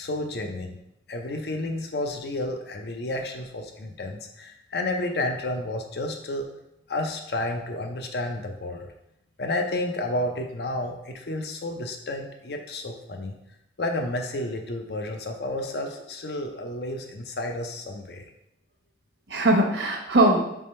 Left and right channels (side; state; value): both; normal; correlation 0.13